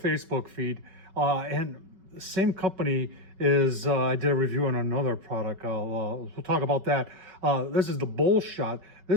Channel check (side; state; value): left; late; 5.3 ms